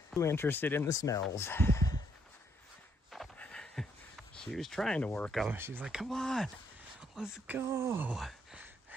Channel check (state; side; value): normal; both; correlation 0.72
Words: Too interested in the smells. She was trying to work them. She's like, come on, let's go.